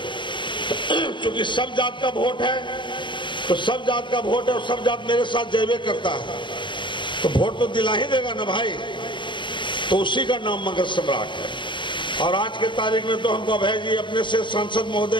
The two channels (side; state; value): right; late; 0.23 ms